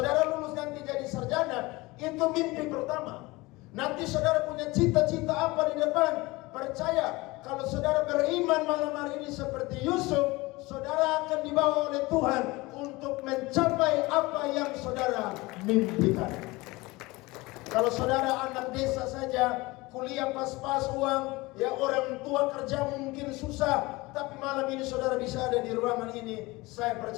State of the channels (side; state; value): right; quieter; 22.1 dB